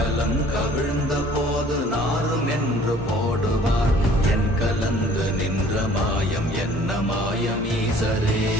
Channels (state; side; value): normal; both; correlation 0.53